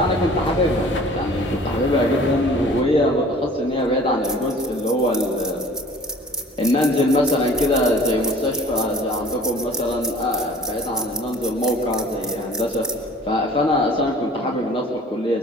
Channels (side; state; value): both; normal; correlation 0.49